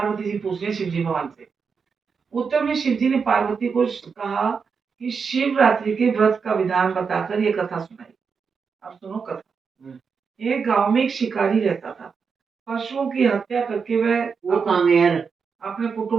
जी पूछ रही शिव जी भगवान से। उत्तर में शिव जी ने पार्वती को कहा कि शिवरात्रि के व्रत का विधान बताकर ये कथा सुनाई। अब सुनो कथा। एक गांव में एक शिकारी रहता था। पशुओं की हत्या करके वह अपने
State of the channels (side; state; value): left; quieter; 5.7 dB